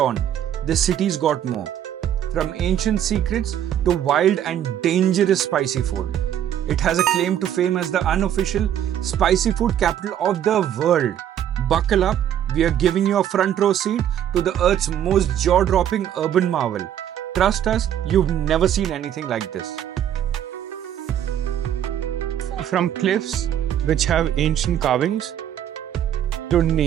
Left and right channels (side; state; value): left; quieter; 10.4 dB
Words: this city's got more. From ancient secrets to wild and dangerous spicy food. It has a claim to fame as the unofficial spicy food capital of the world. Buckle up, we are giving you a front row seat to the Earth's most jaw-dropping urban marvel. Trust us, you've never seen anything like this. From cliffs which have ancient carvings to